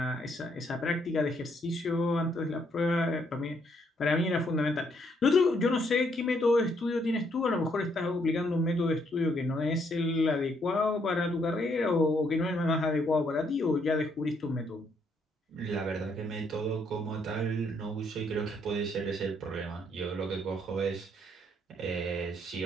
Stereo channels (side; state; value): both; normal; correlation 0.72